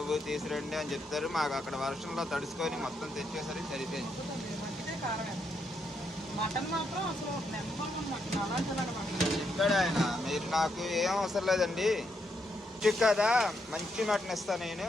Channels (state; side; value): normal; both; correlation 0.79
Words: తీసురండి అని చెప్తారు. మాకు అక్కడ వర్షంలో తడుచుకొని మొత్తం తెచ్చేసరికి సరిపోయింది. ఇక్కడ ఆయన మీరు నాకు ఏం అవసరం లేదండి. కదా మంచి మటన్ ఇస్తాను నేను.